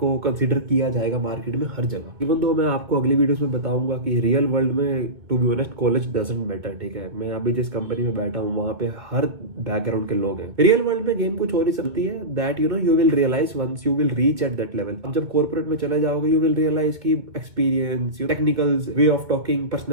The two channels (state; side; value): late; left; 2.2 ms